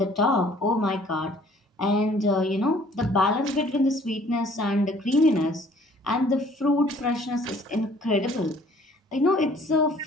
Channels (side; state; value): both; normal; correlation 0.56